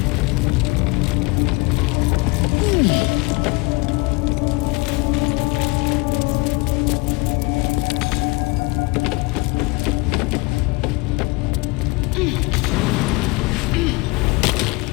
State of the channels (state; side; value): quieter; right; 25.9 dB